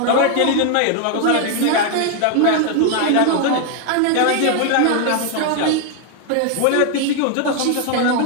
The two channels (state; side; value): different; both; correlation 0.00